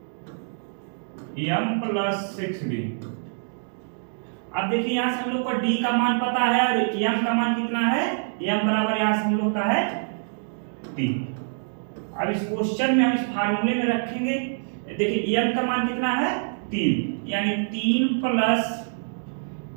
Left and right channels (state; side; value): silent; left; digital silence